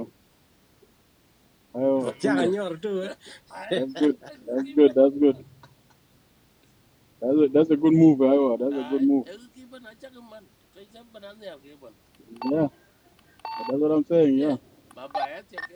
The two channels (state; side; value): identical; both; correlation 1.00